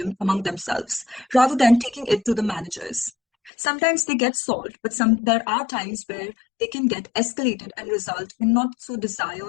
among themselves, rather than taking it to the managers. Sometimes they get solved, but there are times where they can get escalated and result in not so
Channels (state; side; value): drops out; right; at 3.5 s